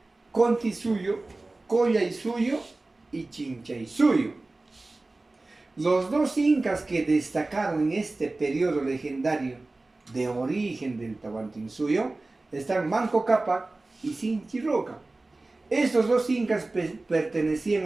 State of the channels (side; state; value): left; quieter; 3.1 dB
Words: Contisuyo, Collaisuyo y Chinchaysuyo. Los 2 incas que destacaron en este periodo legendario de origen del Tahuantinsuyo están Manco Cápac y Sinchiroca. Estos 2 incas